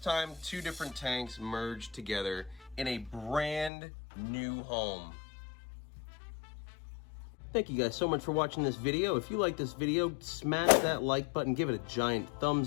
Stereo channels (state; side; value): drops out; right; at 3.7 s